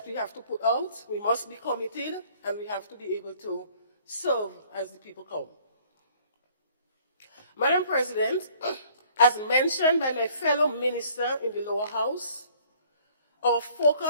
we have to put out. We must be committed, and we have to be able to serve as the people come. Madam President, as mentioned by my fellow minister in the lower house, our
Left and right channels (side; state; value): both; inverted; correlation -0.57